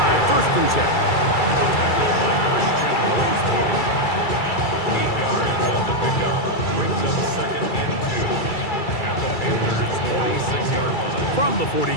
1st and 10. From the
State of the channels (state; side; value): late; right; 2.3 ms